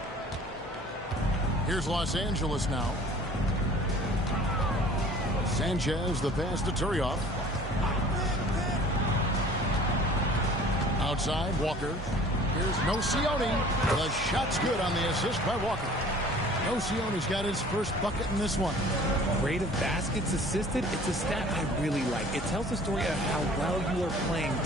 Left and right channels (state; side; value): normal; both; correlation 0.49